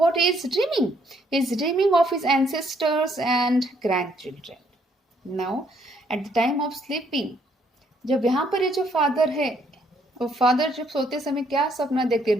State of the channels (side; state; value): both; normal; correlation 0.69